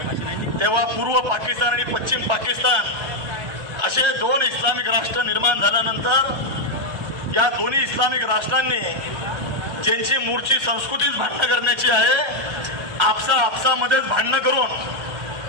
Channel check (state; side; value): late; left; 1.3 ms